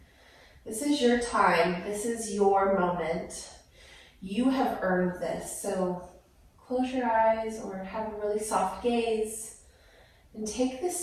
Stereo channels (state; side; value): identical; both; correlation 1.00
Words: This is your time. This is your moment. You have earned this. So close your eyes or have a really soft gaze and take